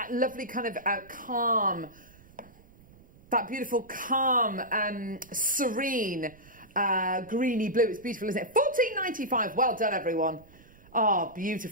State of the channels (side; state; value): right; noise; rumble, 25 dB below the sound